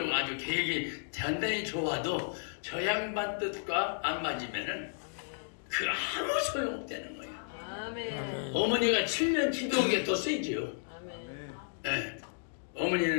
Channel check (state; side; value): silent; right; digital silence